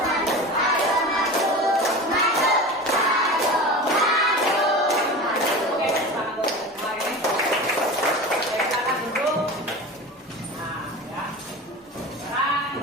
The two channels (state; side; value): normal; both; correlation 0.31